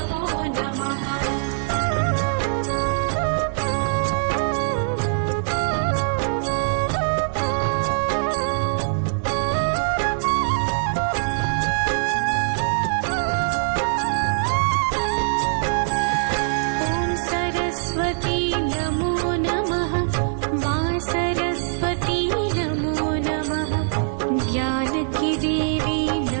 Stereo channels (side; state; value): left; silent; 57 dB below the other